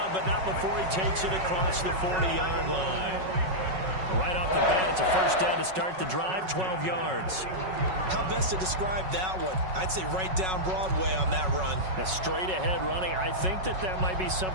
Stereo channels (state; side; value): late; left; 5.4 ms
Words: but not before he takes it across the 40-yard line. Right off the bat, it's a first down to start the drive, 12 yards. How best to describe that one? I'd say right down Broadway on that run. A straight-ahead running. I think that might be